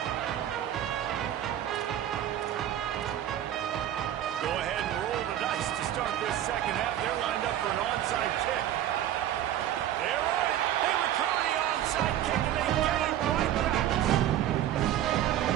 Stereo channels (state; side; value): quieter; left; 11.7 dB